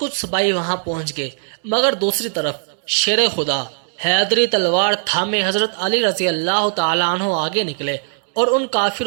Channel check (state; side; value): silent; left; 66 dB below the other